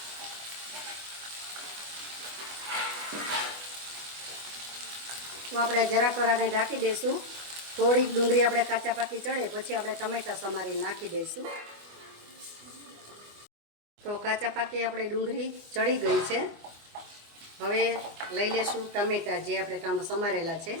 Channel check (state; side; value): late; left; 25 ms